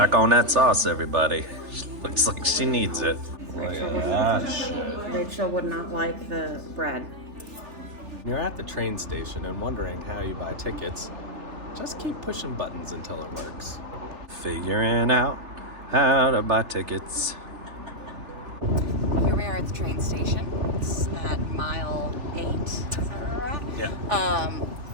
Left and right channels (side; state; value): left; late; 3.4 ms